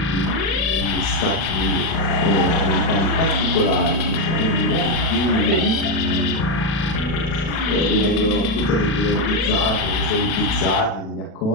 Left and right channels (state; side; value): late; right; 37 ms